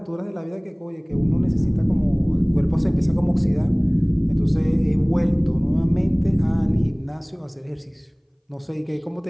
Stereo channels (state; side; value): identical; both; correlation 1.00